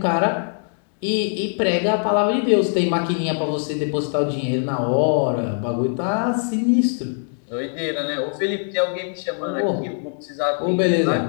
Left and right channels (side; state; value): right; silent; digital silence